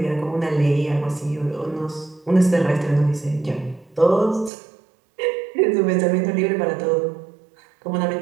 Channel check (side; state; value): left; drops out; at 4.5 s